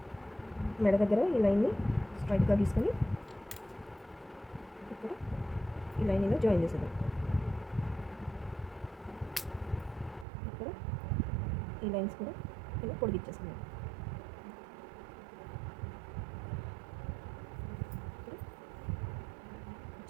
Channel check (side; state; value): left; drops out; at 10.2 s